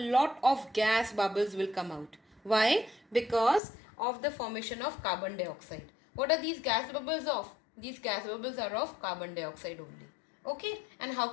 of gas bubbles will come out. Why? Because of the formation of carbon dioxide. What are these gas bubbles of? These gas bubbles are of carbon dioxide only. Okay, and how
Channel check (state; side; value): drops out; right; at 3.6 s